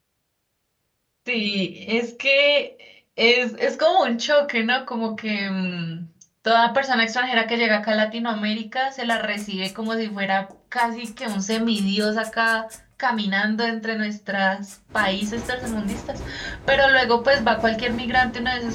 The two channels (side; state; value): both; identical; correlation 1.00